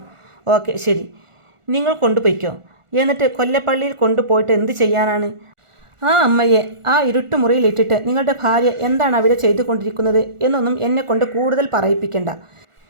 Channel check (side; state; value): left; late; 1.4 ms